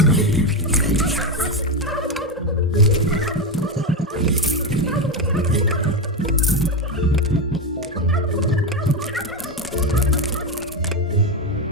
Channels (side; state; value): both; normal; correlation 0.11